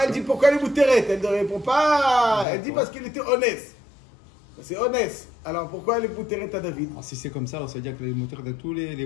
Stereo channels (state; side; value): drops out; right; at 2.5 s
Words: elle dit pourquoi elle est muteret. Elle ne répond pas. Elle dit parce qu'il était honnête. C'est honnête. Alors pourquoi elle est muteret à David? Si c'est comme ça, alors ça veut dire qu'elle est muteret de tous les